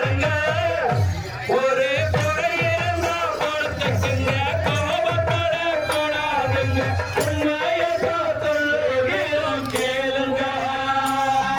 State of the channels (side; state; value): both; identical; correlation 1.00